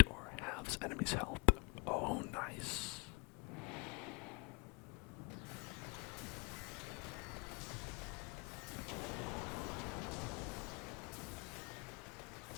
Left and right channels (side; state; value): right; quieter; 31.3 dB